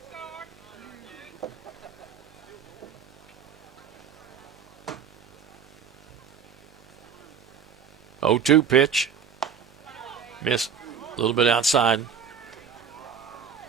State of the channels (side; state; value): left; quieter; 6.8 dB